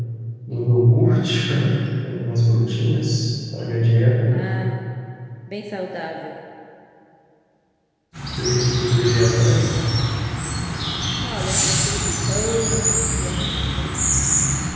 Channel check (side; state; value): both; identical; correlation 1.00